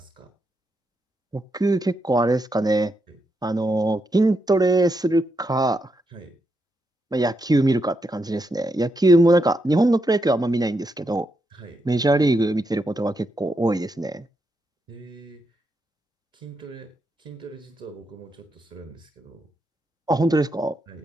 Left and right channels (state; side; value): normal; both; correlation 0.82